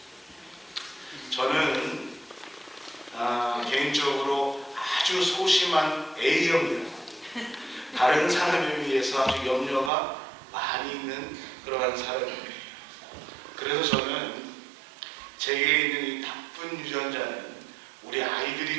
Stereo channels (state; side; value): drops out; left; at 9.9 s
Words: 저는 개인적으로 아주 소심한 A형입니다. 다른 사람에 비해서 아주 염려가 많이 있는 그러한 사람입니다. 그래서 저는 제게 있는 이 나쁜 유전자는 우리 아이들이